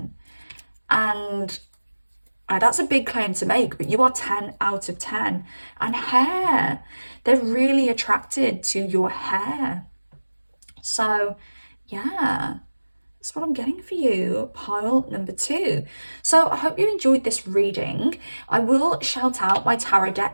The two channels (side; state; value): both; inverted; correlation -1.00